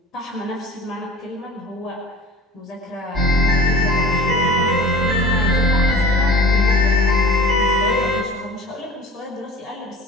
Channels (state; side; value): normal; both; correlation 0.42